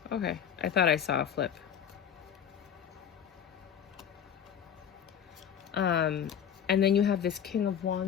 Okay, I thought I saw a flip. And then you have this King of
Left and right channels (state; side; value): quieter; right; 8.6 dB